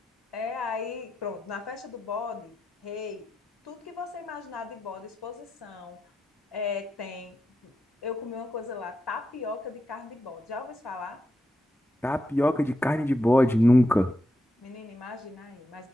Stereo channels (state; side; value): normal; both; correlation 0.86